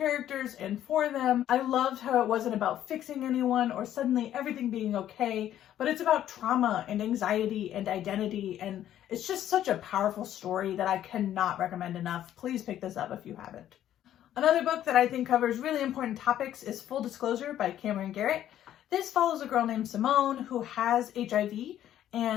and for them. I loved how it wasn't about fixing anyone or suddenly everything being okay, but it's about trauma and anxiety and identity, and it's just such a powerful story that I cannot recommend enough. Please pick this up if you haven't. Another book that I think covers really important topics is Full Disclosure by Cameron Garrett. This follows a girl named Simone who has HIV,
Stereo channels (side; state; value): right; quieter; 11.6 dB